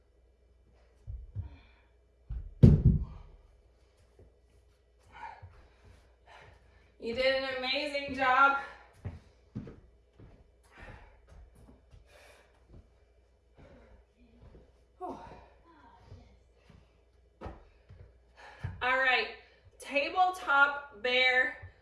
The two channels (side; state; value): both; identical; correlation 1.00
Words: You did an amazing job. Oh. All right, tabletop bear